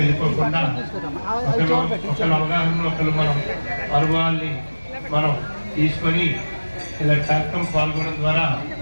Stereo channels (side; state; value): both; inverted; correlation -1.00